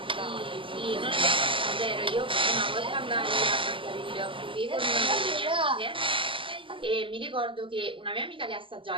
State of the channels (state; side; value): late; left; 0.25 ms